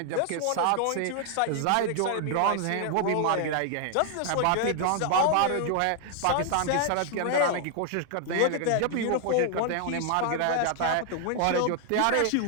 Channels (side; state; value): both; different; correlation 0.00